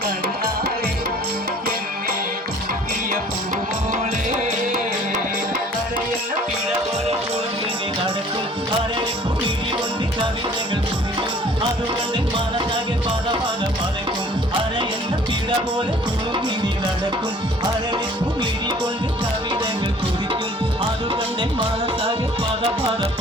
കണ്ണാളെ എന്നെ കുടുക്കിയ പൂവോളെ അരയെന്ന പിഴ പോലെ കുളിഞ്ഞി നടക്കും അരളിപ്പു ഇടി കൊണ്ട് കവിതകൾ കുറിക്കും അതുകൊണ്ട് മനസ്സാകെ പല പല പലക്കും അരയെന്ന പിഴ പോലെ കുളിഞ്ഞി നടക്കും അരളിപ്പു ഇടി കൊണ്ട് കവിതകൾ കുറിക്കും അതുകൊണ്ട് മനസ്സാകെ പല പല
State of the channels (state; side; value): normal; both; correlation 0.52